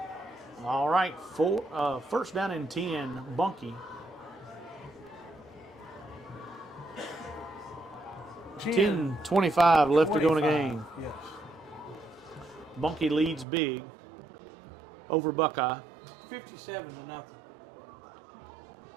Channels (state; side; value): drops out; left; at 13.5 s